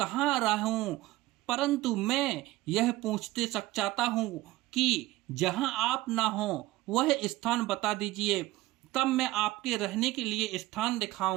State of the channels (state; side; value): quieter; left; 17.8 dB